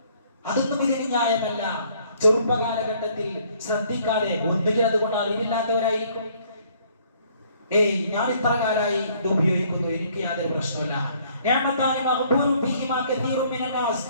അതൊന്നും ഇതിന് ന്യായമല്ല. ചെറുപ്പകാലഘട്ടത്തിൽ ശ്രദ്ധിക്കാതെ ഒന്നുകിൽ അതുകൊണ്ട് അറിവില്ലാത്തവരായിരിക്കും. ഞാൻ ഇത്ര കാലമായി ഇത് ഉപയോഗിക്കുന്നു, എനിക്ക് യാതൊരു പ്രശ്നമില്ല.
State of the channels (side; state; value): both; inverted; correlation -0.62